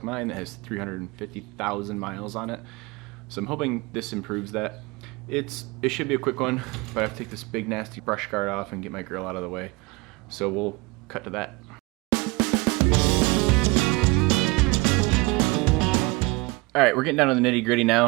mine that has 350,000 miles on it. So I'm hoping this improves that. It should be a quick one, but I have to take this big nasty brush guard off and get my grill out of the way. So we'll cut to that. Alright, we're getting down to the nitty gritty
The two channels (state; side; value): quieter; left; 25.0 dB